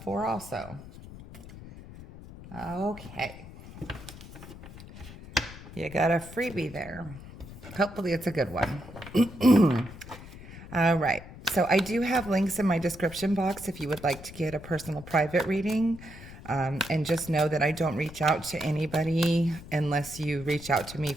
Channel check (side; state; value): left; noise; rumble, 15 dB below the sound